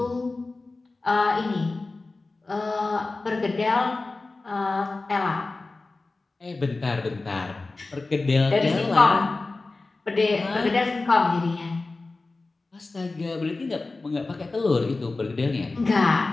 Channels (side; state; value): right; quieter; 3.5 dB